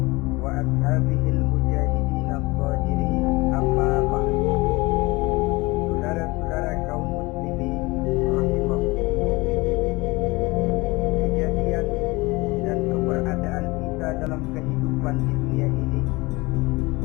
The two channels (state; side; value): quieter; right; 23.1 dB